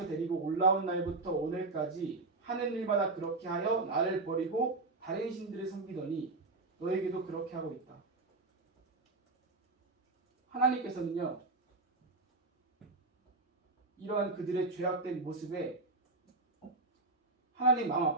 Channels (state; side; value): quieter; left; 3.3 dB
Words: 데리고 올라온 날부터 오늘까지 하는 일마다 그렇게 하여 나를 버리고 다른 신들을 섬기더니 너에게도 그렇게 하고 있다. 하나님께서는요, 이러한 그들의 죄악된 모습에 하나님 마음